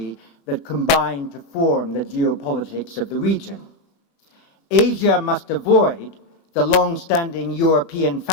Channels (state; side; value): late; right; 21 ms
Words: that combine to form the geopolitics of the region. Asia must avoid the long-standing European